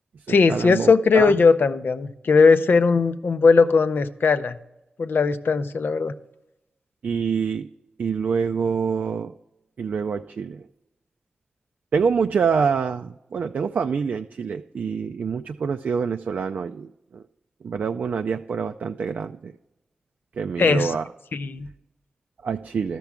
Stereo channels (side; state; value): both; normal; correlation 0.82